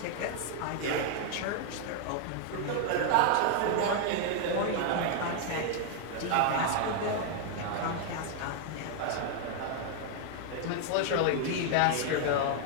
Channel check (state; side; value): different; both; correlation 0.00